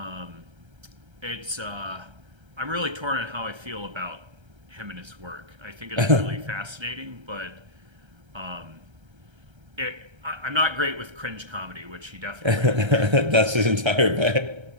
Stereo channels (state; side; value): late; left; 1.3 ms